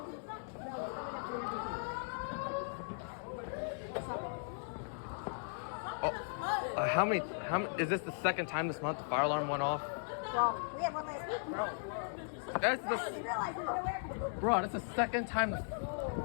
How many, is this the second time this month the fire alarm went off? Well, we have one last week, bro. Bro, that's the second time.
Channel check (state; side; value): silent; right; digital silence